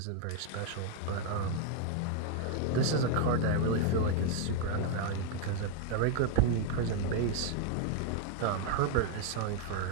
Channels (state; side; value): different; both; correlation 0.01